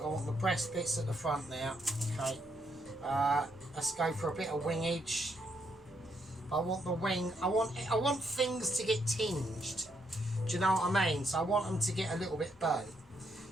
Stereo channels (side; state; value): both; normal; correlation 0.76